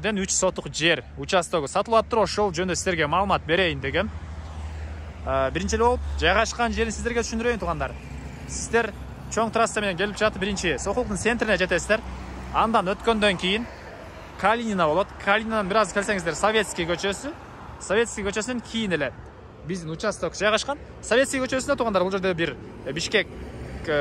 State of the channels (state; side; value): identical; both; correlation 1.00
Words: 3 сотук жер участогу сатылып атыр. Ошол жөнүндө сиздерге маалымат берейин дегем. Биринчи болуп жайгашкан жерин сиздерге түшүндүрөйүн туғандар. Сиздер чоң трасса менен келип жатып, биринчи Сокулуктун центрине жетесиздер. Андан өткөндөн кийин Калинина болот. Калининадан бир аз келсеңиздер Советский көчөсү. Советский көчөсүнөн кийин эле биздин участок жайгашкан. Советский көчөсүндө тугандар, бул жерде бир Бишкек